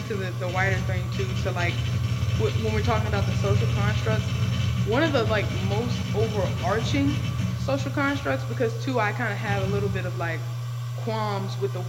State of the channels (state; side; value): identical; both; correlation 1.00